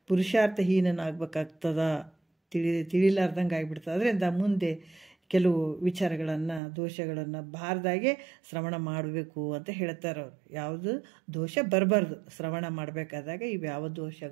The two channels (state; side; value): drops out; left; at 6.6 s